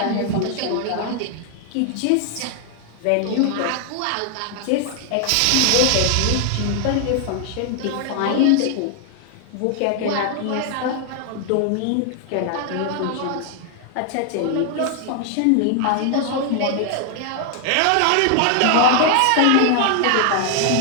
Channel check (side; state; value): both; different; correlation 0.00